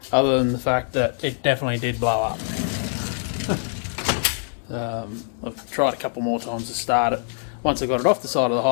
other than the fact that it definitely did blow up. I've tried a couple more times to start it. Once I got it off the side of the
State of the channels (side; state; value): right; silent; digital silence